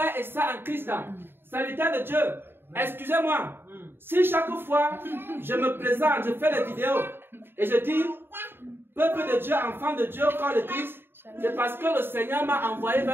et sœurs en Christ, serviteurs de Dieu, excusez-moi, si chaque fois je me présente, je fais des vidéos et je dis, peuple de Dieu, enfant de Dieu, corps de Christ, c'est parce que le Seigneur m'a envoyé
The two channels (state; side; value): late; left; 0.11 ms